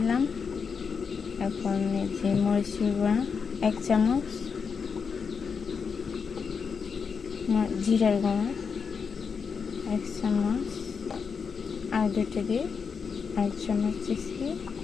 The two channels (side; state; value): right; quieter; 5.9 dB